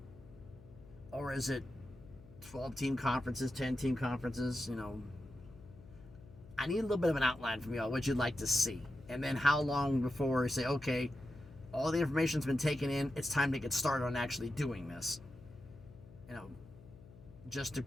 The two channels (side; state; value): left; noise; hum, 20 dB below the sound